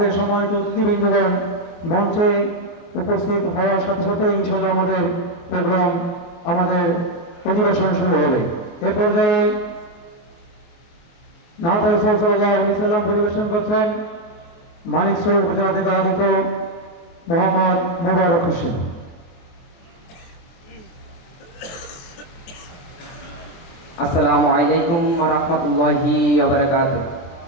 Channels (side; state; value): right; late; 24 ms